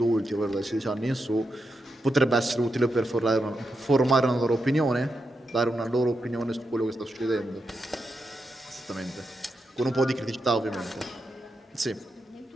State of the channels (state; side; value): normal; both; correlation 0.86